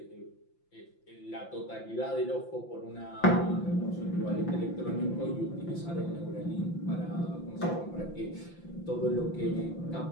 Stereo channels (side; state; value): right; late; 5.8 ms